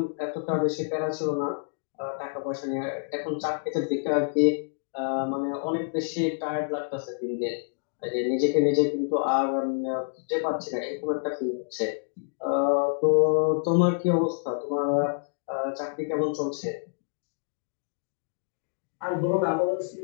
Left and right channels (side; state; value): right; silent; digital silence